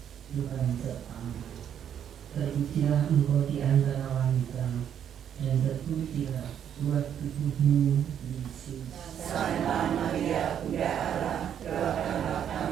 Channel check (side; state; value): left; quieter; 9.2 dB